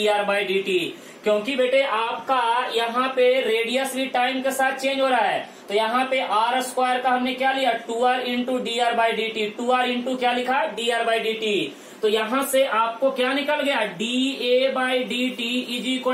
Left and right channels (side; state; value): both; identical; correlation 1.00